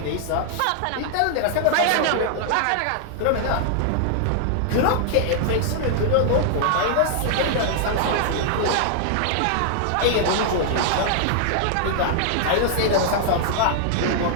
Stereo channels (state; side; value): different; both; correlation -0.01